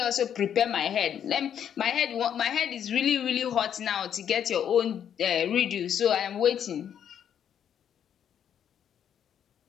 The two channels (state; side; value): quieter; right; 9.1 dB